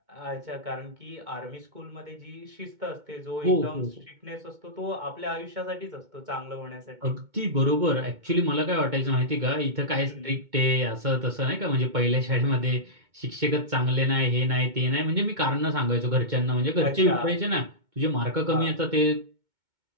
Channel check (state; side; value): late; left; 2.2 ms